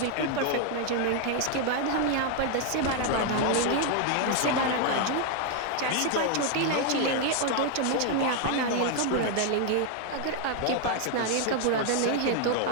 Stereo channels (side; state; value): both; different; correlation 0.00